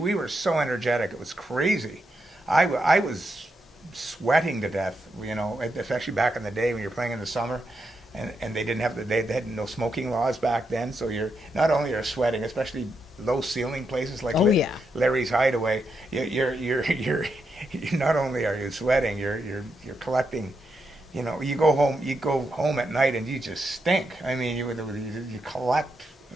we were so energetic, it was crazy. I was sweating to death, you know, especially back in the day when you're playing in the summer, and they had no smoking laws back then, so you're not only are sweating, especially low ceiling places like Larry's Hideaway, you're not only are you sweating, you're collecting, you know, you go home at night and you just stink. I mean, you collect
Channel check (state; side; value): normal; both; correlation 0.83